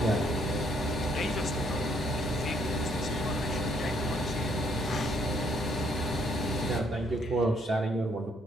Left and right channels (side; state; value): both; normal; correlation 0.68